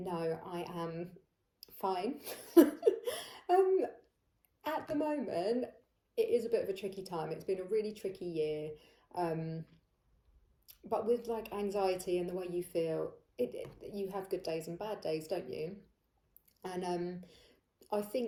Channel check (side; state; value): both; identical; correlation 1.00